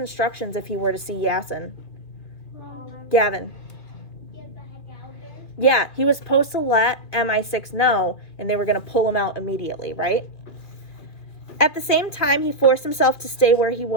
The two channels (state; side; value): late; right; 2.4 ms